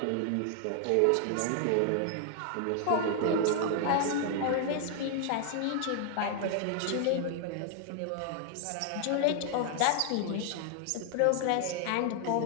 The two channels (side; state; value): both; different; correlation 0.00